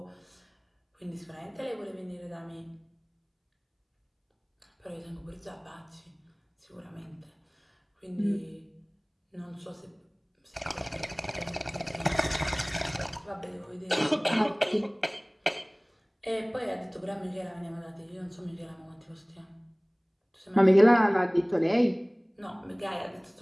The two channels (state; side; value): identical; both; correlation 1.00